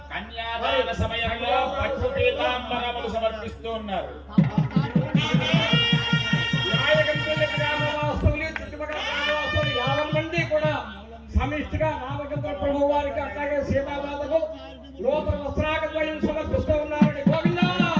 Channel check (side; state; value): both; identical; correlation 1.00